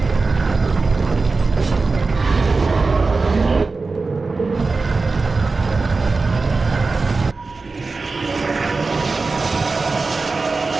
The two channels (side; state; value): left; quieter; 3.9 dB